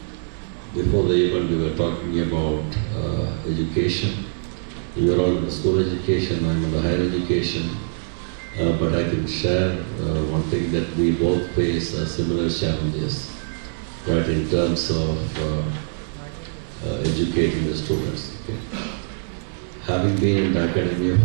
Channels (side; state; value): left; silent; digital silence